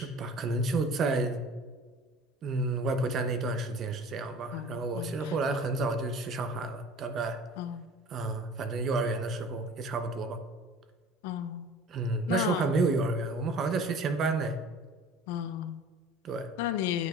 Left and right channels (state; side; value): normal; both; correlation 0.44